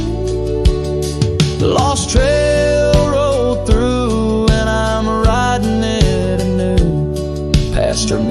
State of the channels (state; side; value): identical; both; correlation 1.00